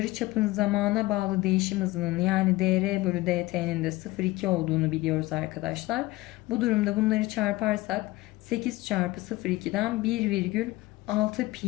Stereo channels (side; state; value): right; quieter; 19.3 dB